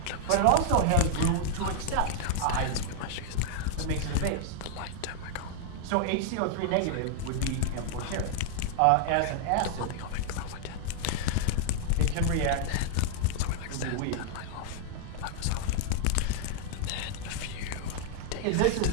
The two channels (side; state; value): both; different; correlation 0.00